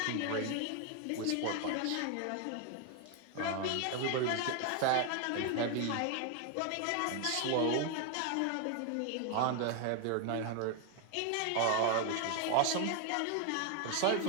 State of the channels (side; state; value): both; different; correlation 0.01